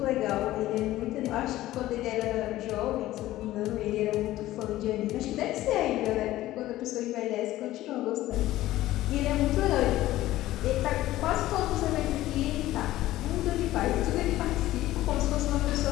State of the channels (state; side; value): quieter; right; 15.5 dB